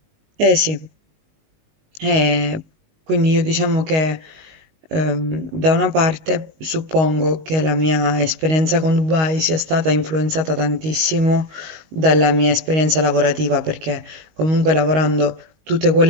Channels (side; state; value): left; late; 19 ms